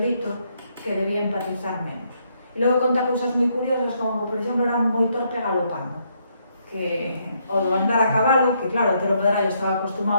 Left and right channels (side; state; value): both; inverted; correlation -0.74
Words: que debía empatizar menos. E logo conta cousas moi curiosas, como, por exemplo, era moi torpe galopando, que o do andar a cabalo, que claro, Otero Pedrallo estaba